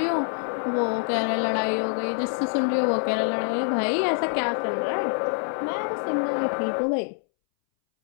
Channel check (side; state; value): right; silent; 61 dB below the other